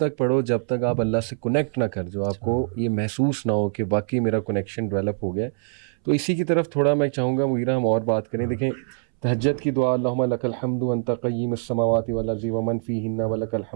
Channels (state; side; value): silent; left; 63 dB below the other